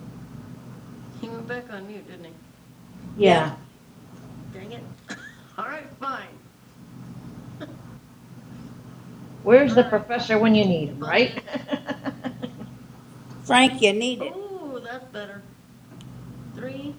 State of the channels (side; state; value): both; identical; correlation 1.00